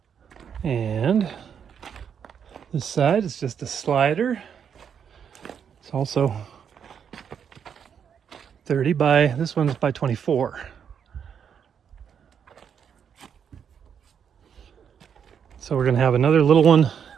And this side is just a slider. It's also 30 by, this one's by 24. So we're going to have another little one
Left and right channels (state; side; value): quieter; left; 7.7 dB